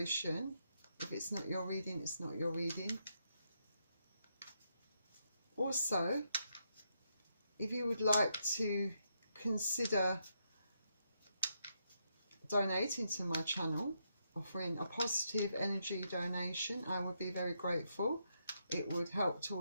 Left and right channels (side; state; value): both; inverted; correlation -0.79